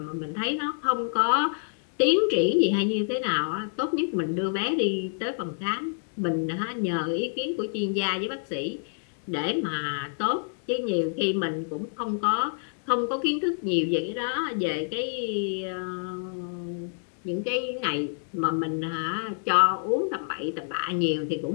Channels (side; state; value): right; silent; digital silence